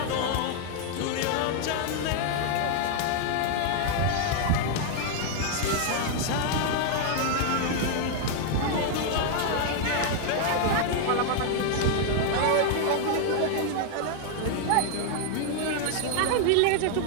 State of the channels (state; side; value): different; both; correlation 0.00